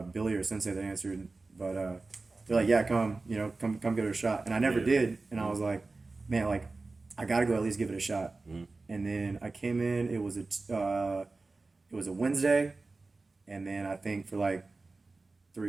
Billy or Sensei that answered, but they're like, yeah, come give it a shot. And I never did, and I was like, man, like I gotta go at least give it a shot. Mm-hmm. And then I came in. It was a Wednesday, and then I think for like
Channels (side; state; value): left; quieter; 3.6 dB